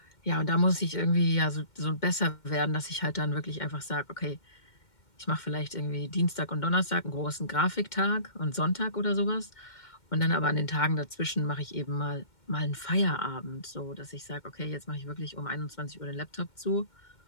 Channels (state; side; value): late; right; 2.1 ms